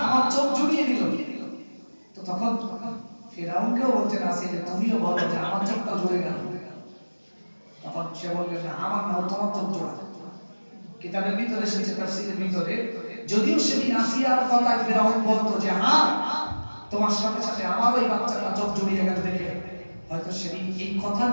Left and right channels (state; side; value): inverted; both; correlation -1.00